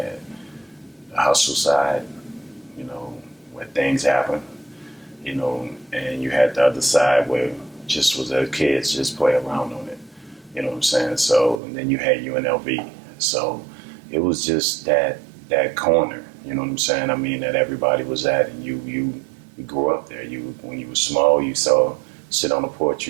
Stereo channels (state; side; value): drops out; left; at 11.6 s